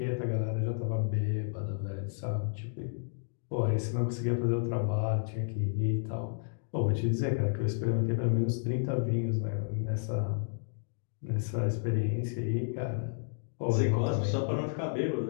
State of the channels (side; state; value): right; silent; digital silence